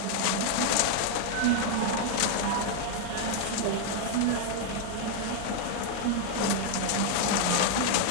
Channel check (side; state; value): both; different; correlation 0.00